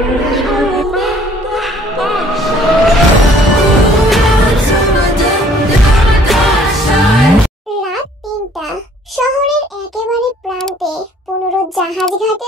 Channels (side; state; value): both; normal; correlation 0.58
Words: রাত ৩টা। শহরের একেবারে প্রান্তে ১৫ জাহাজ